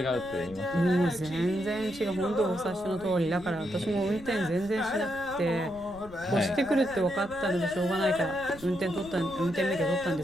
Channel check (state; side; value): noise; left; rumble, 18 dB below the sound